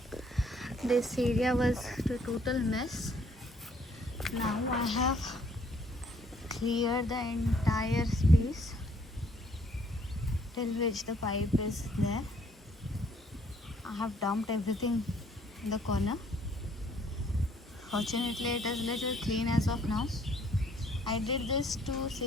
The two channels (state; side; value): normal; both; correlation 0.64